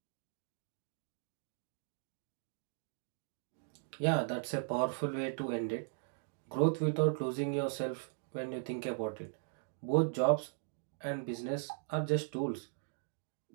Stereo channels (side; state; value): left; silent; digital silence